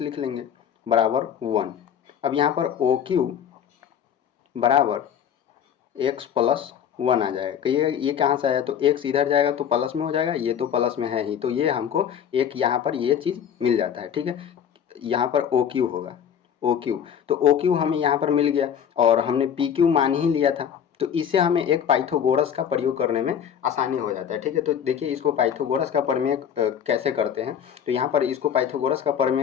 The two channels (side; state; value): right; quieter; 8.6 dB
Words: लिख लेंगे बराबर 1। अब यहाँ पर ओ क्यू बराबर एक्स प्लस 1 आ जाएगा। कहिए ये कहाँ से आया, तो एक्स इधर जाएगा तो प्लस में हो जाएगा, ये तो प्लस में है ही, तो ये हमको एक यहाँ पर ये चीज़ मिल जाता है। ठीक है, यहाँ पर ओ क्यू होगा, ओ क्यू, तो ओ क्यू हमें यहाँ पर मिल गया और हमने पी क्यू मान ही लिया था, तो इसे हमें एक पाइथागोरस का प्रयोग करने में आसानी हो जाता है। ठीक है, तो देखिए इसको पाइथागोरस का प्रमेय कैसे करते हैं। तो यहाँ पर इसको पाइथागोरस का